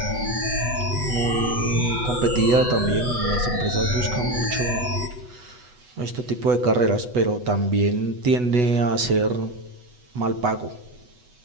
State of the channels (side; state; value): left; late; 8.1 ms